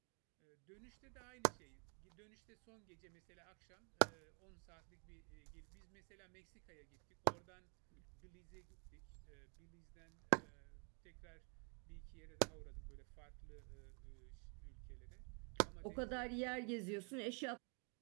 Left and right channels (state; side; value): quieter; left; 37.4 dB